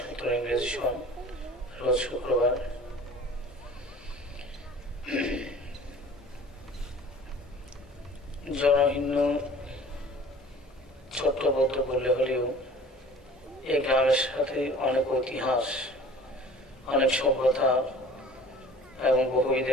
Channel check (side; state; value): both; normal; correlation 0.46